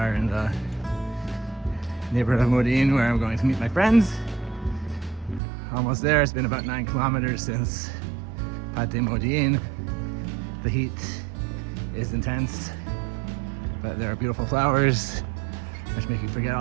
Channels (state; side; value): drops out; left; at 5.4 s